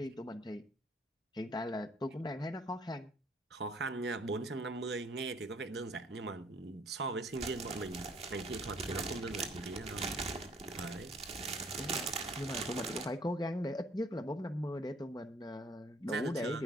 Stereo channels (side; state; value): both; normal; correlation 0.60